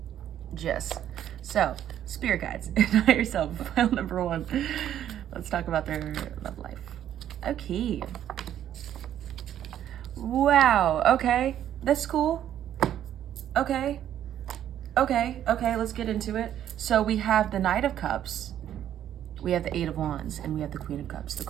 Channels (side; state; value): left; quieter; 10.8 dB